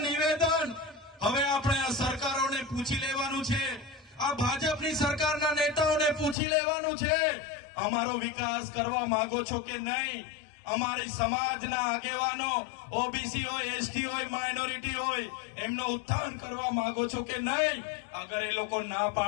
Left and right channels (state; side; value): drops out; right; at 6.4 s